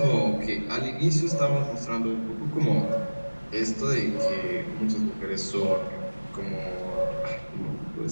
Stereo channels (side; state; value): both; inverted; correlation -1.00